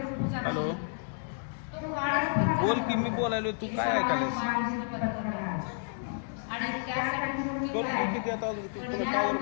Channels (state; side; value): silent; right; digital silence